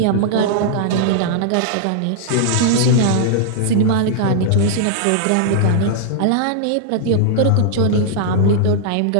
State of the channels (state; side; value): different; both; correlation -0.01